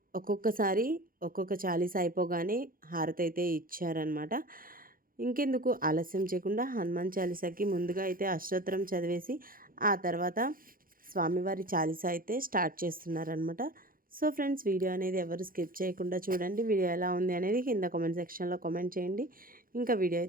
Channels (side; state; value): left; late; 0.41 ms